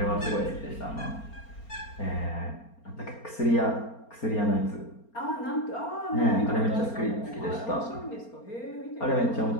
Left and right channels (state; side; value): late; right; 4.3 ms